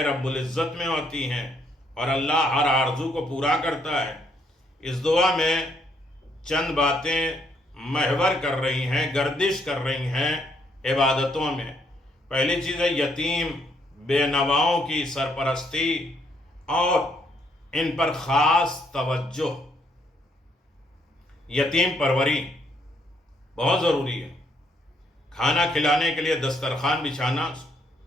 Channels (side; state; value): both; normal; correlation 0.71